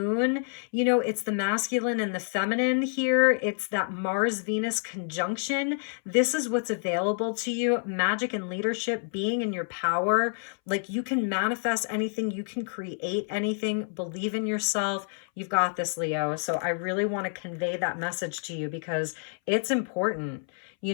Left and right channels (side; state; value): right; silent; 59 dB below the other